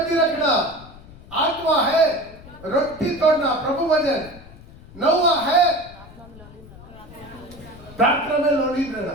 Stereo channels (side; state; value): left; noise; rumble, 20 dB below the sound